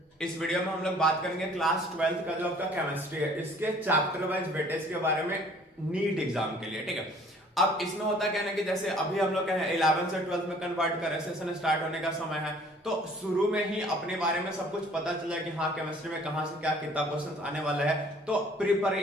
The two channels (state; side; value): normal; both; correlation 0.55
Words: इस वीडियो में हम लोग बात करेंगे क्लास 12th का जो आपका केमिस्ट्री है इसके चैप्टर वाइज वेटेज के बारे में नीट एग्जाम के लिए। ठीक है, अब इसमें होता क्या है ना कि जैसे अभी हम लोग 11 से 12th में कन्वर्ट कर रहे हैं, सेशन स्टार्ट होने का समय है, तो शुरू में ही अपने बारे में सब कुछ पता चला कि हाँ केमिस्ट्री में कहाँ से क्या कितना क्वेश्चन आने वाला है, तो